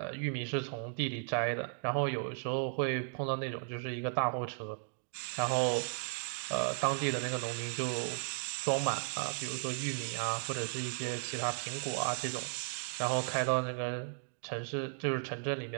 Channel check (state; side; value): silent; left; digital silence